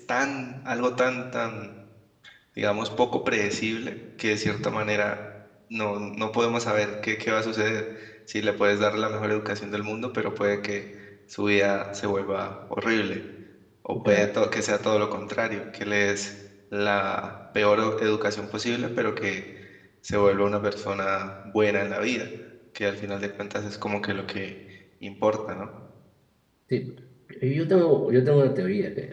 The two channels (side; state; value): both; identical; correlation 1.00